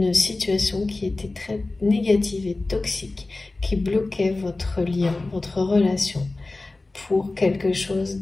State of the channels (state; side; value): quieter; right; 3.2 dB